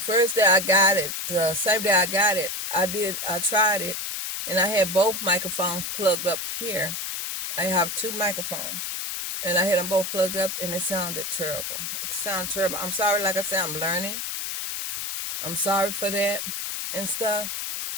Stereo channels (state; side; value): noise; left; hiss, 4 dB below the sound